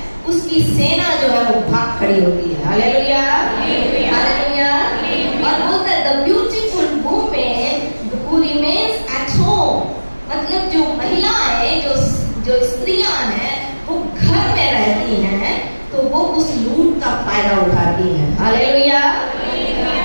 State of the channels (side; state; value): both; inverted; correlation -1.00